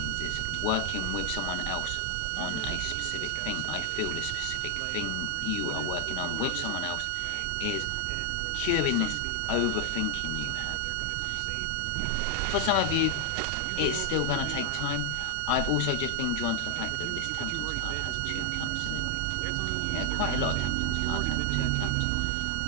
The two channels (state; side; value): different; both; correlation 0.00